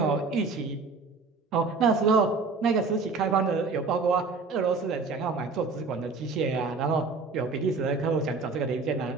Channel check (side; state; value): left; quieter; 4.2 dB